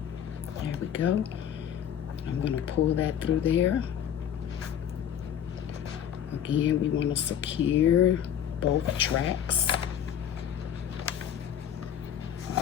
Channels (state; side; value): quieter; right; 9.4 dB